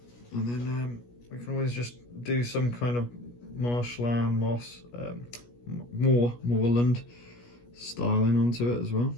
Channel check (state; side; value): late; right; 17 ms